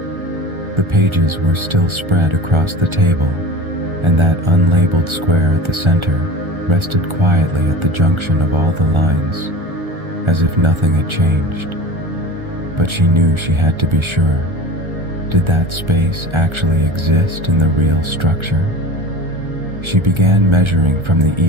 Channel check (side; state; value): left; late; 1.3 ms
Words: The pages were still spread across the table, and that unlabeled square at the center rested quietly at the junction of all the lines, as if nothing had changed. But she knew she had to be sure. Did that space actually exist in the real structure? She began measuring from the